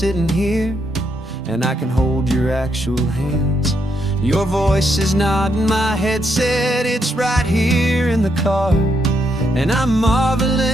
here, and I can hold your actual hands. Your voice is not in my headset, it's right here in the car. And I'm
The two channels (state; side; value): normal; both; correlation 0.78